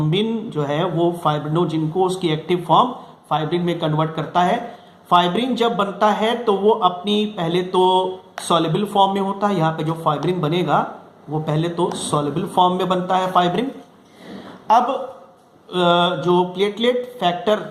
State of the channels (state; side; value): identical; both; correlation 1.00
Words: जो है वो फाइब्रिनोजेन को उसकी एक्टिव फॉर्म फाइब्रिन में कन्वर्ट करता है। फाइब्रिन जब बनता है तो वो अपनी पहले तो सॉल्युबल फॉर्म में होता है। यहाँ पे जो फाइब्रिन बनेगा वो पहले तो सॉल्युबल फॉर्म में बनता है फाइब्रिन। अब जो प्लेटलेट फैक्टर